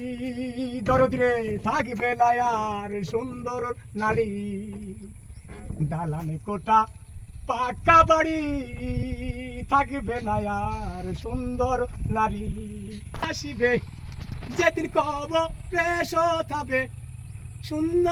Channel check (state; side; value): identical; both; correlation 1.00